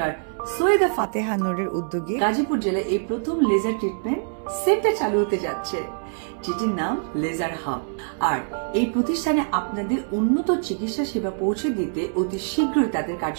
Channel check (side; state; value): left; silent; 61 dB below the other